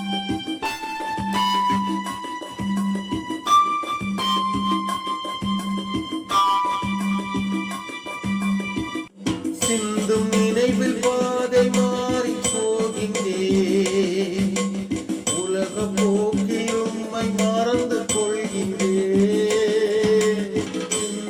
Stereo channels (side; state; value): both; identical; correlation 1.00